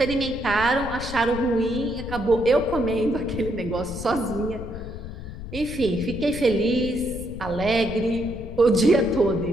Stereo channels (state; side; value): noise; left; rumble, 10 dB below the sound